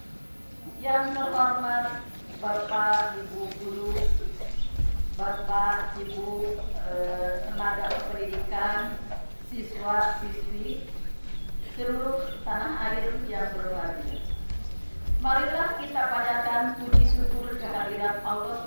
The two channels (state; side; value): inverted; both; correlation -1.00